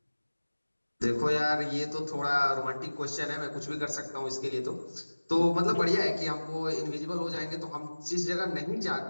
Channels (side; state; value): both; inverted; correlation -1.00